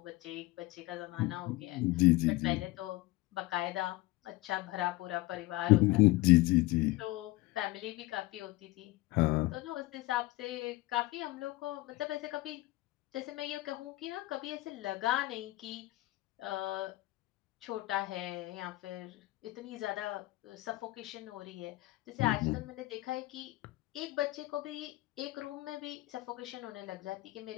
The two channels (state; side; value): quieter; right; 19.1 dB